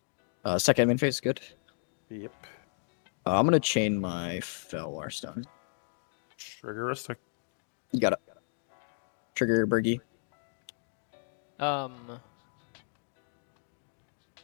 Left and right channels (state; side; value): silent; right; digital silence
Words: Second main phase is good. Yep. I'm gonna chain my Felwar Stone. Triggeristic. You got it. Trigger Bergie.